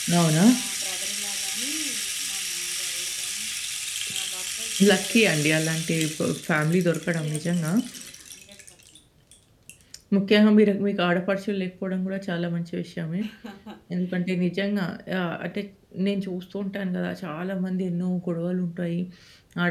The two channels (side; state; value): both; identical; correlation 1.00